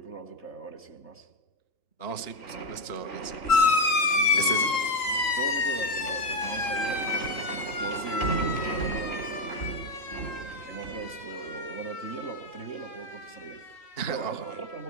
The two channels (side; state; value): right; late; 3.8 ms